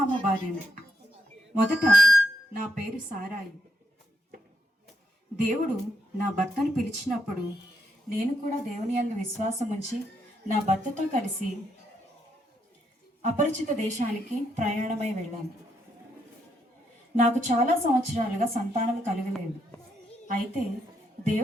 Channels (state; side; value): normal; both; correlation 0.78